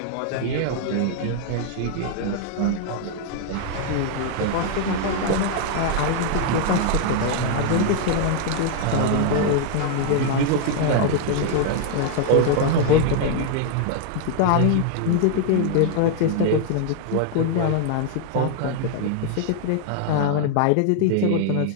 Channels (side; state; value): both; different; correlation 0.00